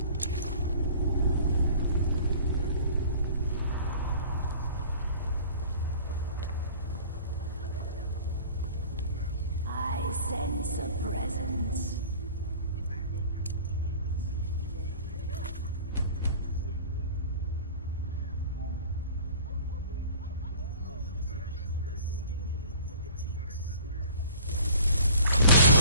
I sense a presence.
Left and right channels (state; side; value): inverted; both; correlation -0.46